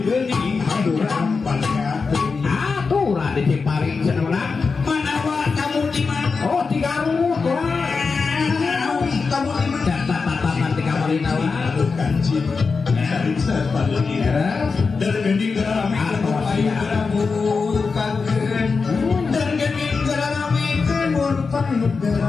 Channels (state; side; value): quieter; right; 4.7 dB